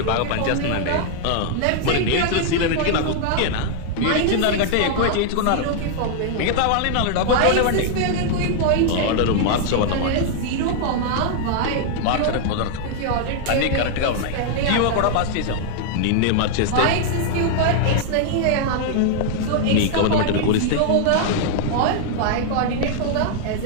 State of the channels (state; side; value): different; both; correlation -0.01